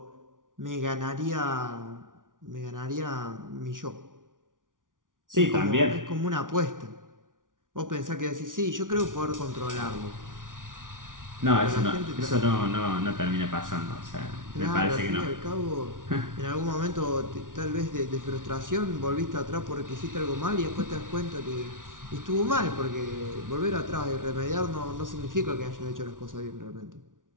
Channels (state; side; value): late; left; 0.88 ms